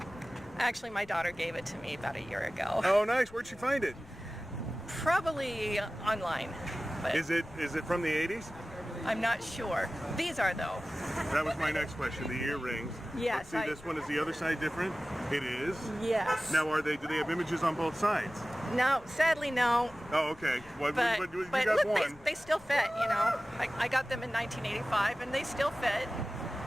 Actually, my daughter gave it to me about a year ago. Oh, nice. Where'd she find it? Probably online. But Is it from the 80s? I'm not sure. These are, though. That was my next question, the earrings. Yes. Let's see, this one, is the other side different? It is? Yes. Now, do they have images on both sides? No, sadly, no. Oh, okay. Well, But you got look, one. they still fit, you know. I got them in 1985, and they still fit.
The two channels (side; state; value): left; noise; rumble, 23 dB below the sound